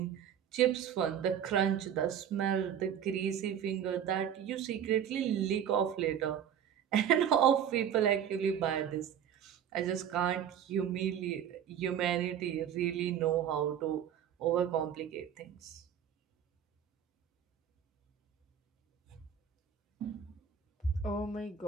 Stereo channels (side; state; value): left; quieter; 9.0 dB